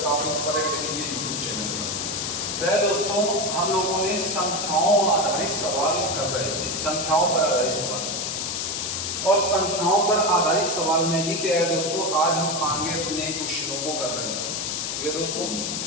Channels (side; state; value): left; noise; hiss, 2 dB below the sound